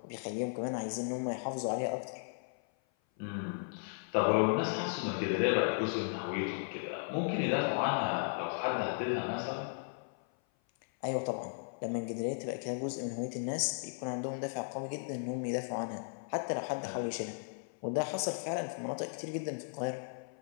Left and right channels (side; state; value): right; silent; 54 dB below the other